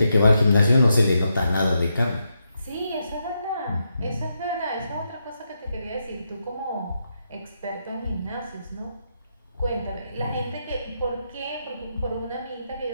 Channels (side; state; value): both; inverted; correlation -0.83